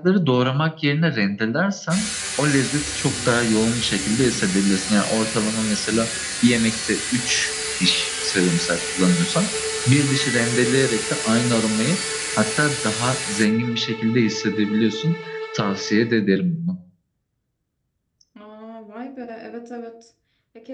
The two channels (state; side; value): identical; both; correlation 1.00